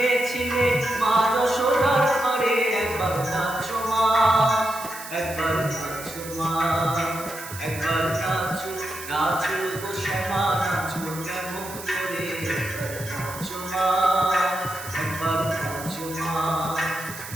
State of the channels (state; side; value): noise; right; hiss, 12 dB below the sound